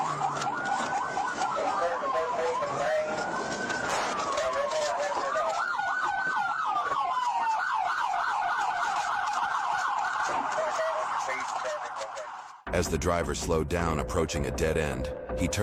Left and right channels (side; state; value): both; identical; correlation 1.00